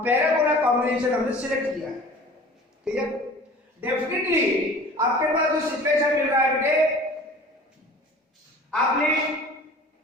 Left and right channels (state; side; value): normal; both; correlation 0.44